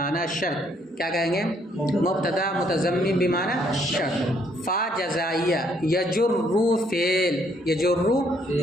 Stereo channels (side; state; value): both; normal; correlation 0.68